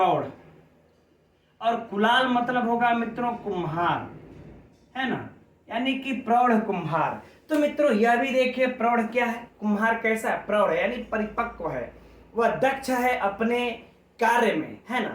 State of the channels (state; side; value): identical; both; correlation 1.00